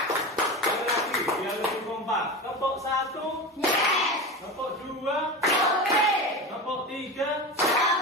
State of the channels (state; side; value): normal; both; correlation 0.25